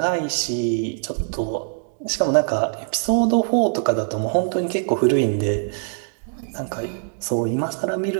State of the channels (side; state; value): left; silent; digital silence